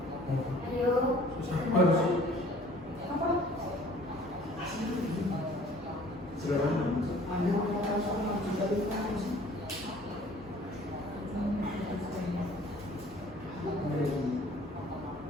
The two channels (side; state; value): left; noise; hum, 25 dB below the sound